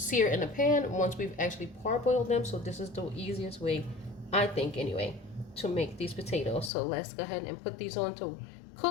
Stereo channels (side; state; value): right; drops out; at 6.7 s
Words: in the pan once we've actually parboiled them. So this is the easiest way, I think anyway, to make these potatoes. So let's go ahead and put these on to